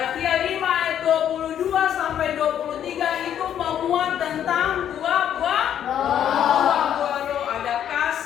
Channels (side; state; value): right; quieter; 9.9 dB